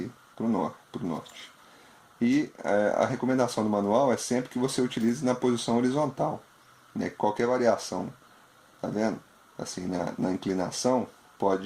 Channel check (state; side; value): identical; both; correlation 1.00